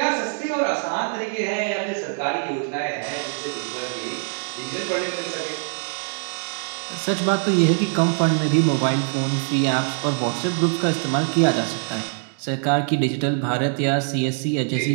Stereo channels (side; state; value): left; silent; 63 dB below the other